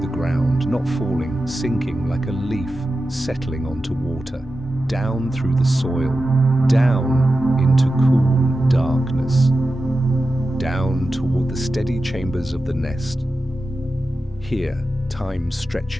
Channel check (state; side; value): normal; both; correlation 0.92